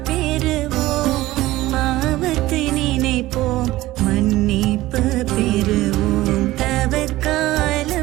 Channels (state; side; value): quieter; left; 17.1 dB